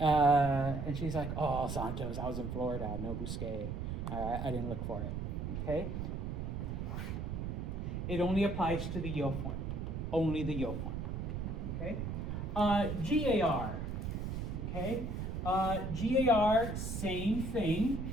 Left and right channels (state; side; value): noise; right; rumble, 4 dB below the sound